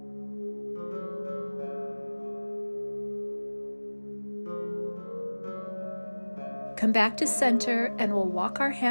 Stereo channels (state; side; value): inverted; both; correlation -1.00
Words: Come back to center and we'll walk our